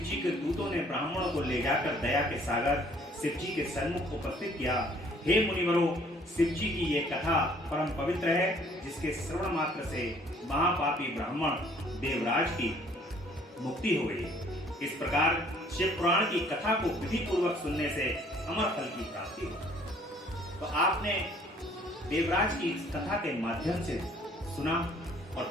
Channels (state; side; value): normal; both; correlation 0.58